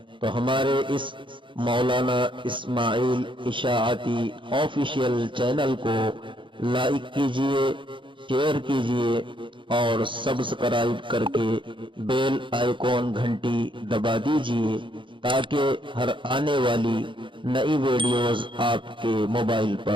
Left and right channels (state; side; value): late; left; 0.24 ms